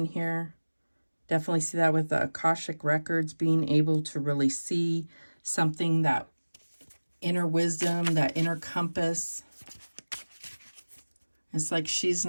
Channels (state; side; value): inverted; both; correlation -1.00